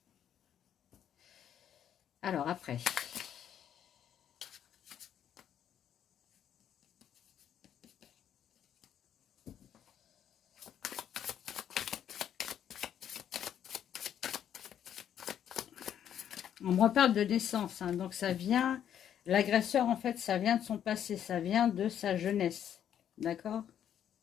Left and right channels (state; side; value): quieter; right; 9.7 dB